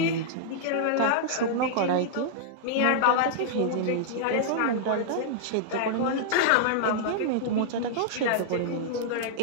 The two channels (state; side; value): different; both; correlation -0.01